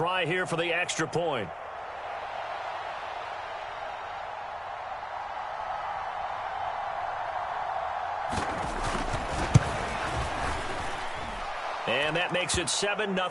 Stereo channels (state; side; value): identical; both; correlation 1.00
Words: here for the extra point. And that makes it